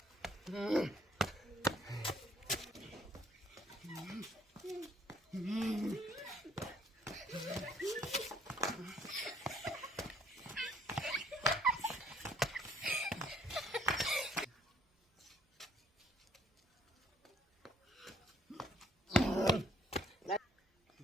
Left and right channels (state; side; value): normal; both; correlation 0.63